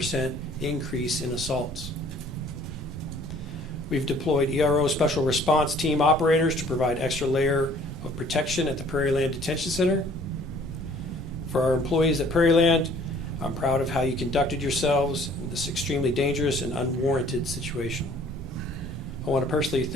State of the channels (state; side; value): normal; both; correlation 0.55